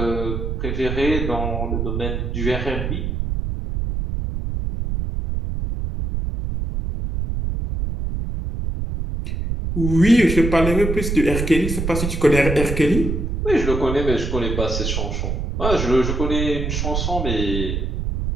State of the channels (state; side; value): noise; right; rumble, 2 dB below the sound